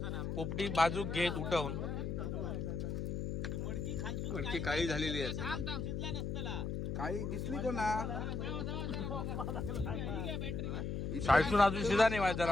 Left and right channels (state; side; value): noise; left; hum, 2 dB below the sound